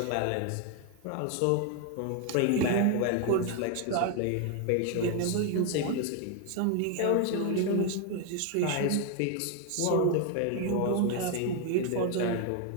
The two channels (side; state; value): both; different; correlation 0.01